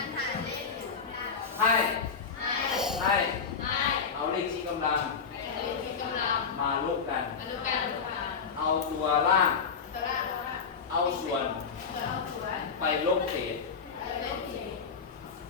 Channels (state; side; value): quieter; right; 5.8 dB